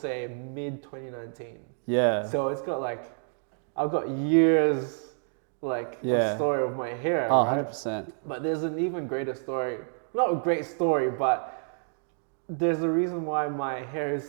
mid 2019. Yeah. So it's got I've got years of story of my hair, right? 100%. But there's an even greater story. Not a great story, but there's a reason why my hair is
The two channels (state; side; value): silent; left; 59 dB below the other